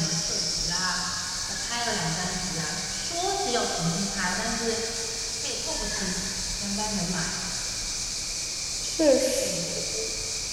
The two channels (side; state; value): both; identical; correlation 1.00